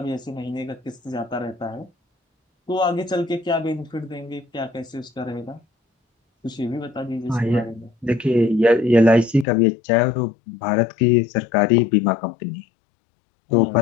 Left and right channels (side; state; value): right; drops out; at 9.5 s